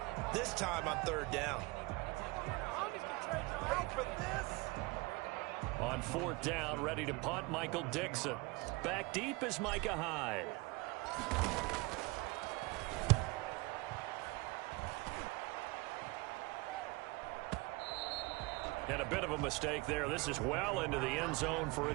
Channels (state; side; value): quieter; left; 24.3 dB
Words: this time on 3rd down. On 4th down, ready to punt, Michael Dixon. Back deep is Micah Hyde. And a bit of a mistake there. This is well into the end zone for a